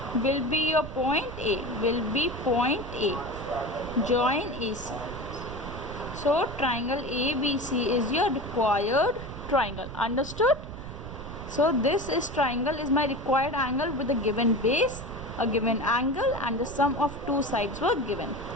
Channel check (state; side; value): noise; right; rumble, 10 dB below the sound